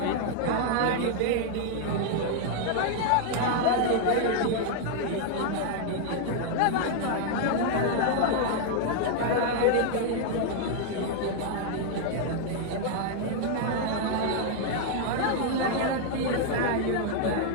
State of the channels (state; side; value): different; both; correlation 0.00